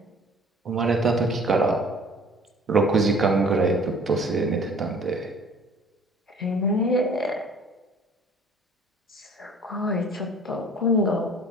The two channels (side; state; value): both; normal; correlation 0.51